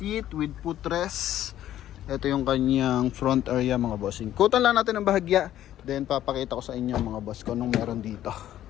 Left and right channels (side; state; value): right; quieter; 12.4 dB